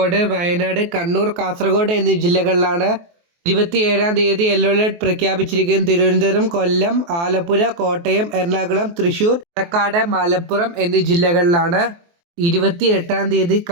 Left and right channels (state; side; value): late; left; 23 ms